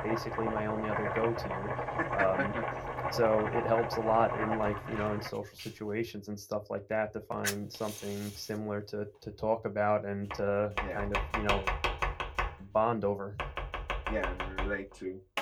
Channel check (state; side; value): identical; both; correlation 1.00